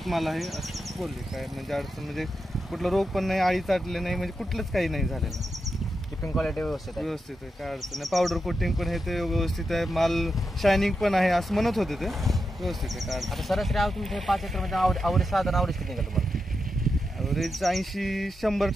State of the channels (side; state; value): both; normal; correlation 0.87